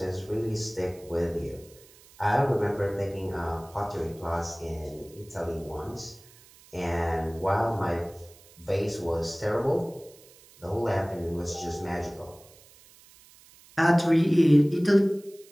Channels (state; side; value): noise; right; hiss, 25 dB below the sound